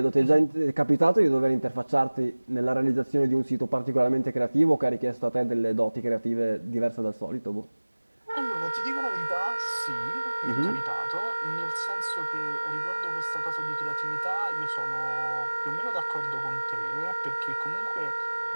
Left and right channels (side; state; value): both; inverted; correlation -1.00